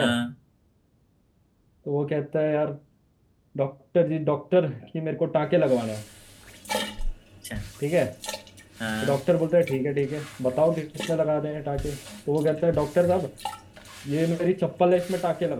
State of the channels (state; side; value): identical; both; correlation 1.00